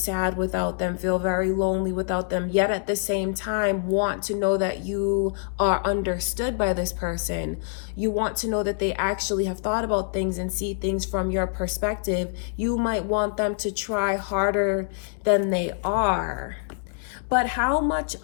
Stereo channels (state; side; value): silent; right; digital silence